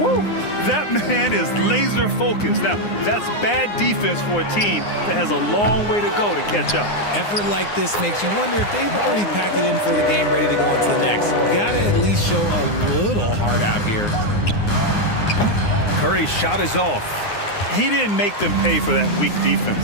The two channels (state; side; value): late; right; 9.7 ms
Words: That man is laser focused. Now, that's bad defense for a team that has a long way to go to catch up. Effort like this makes you wonder if they've already packed it in for the game, ready to go on to the next. Gotta at least show a little heart out here. Curry's shot is off. He didn't make them pay for that weak